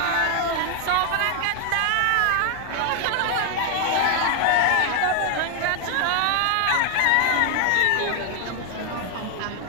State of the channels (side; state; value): both; different; correlation 0.00